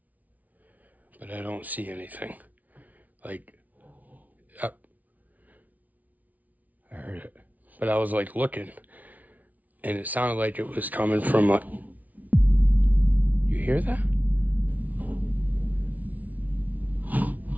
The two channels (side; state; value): left; late; 0.074 ms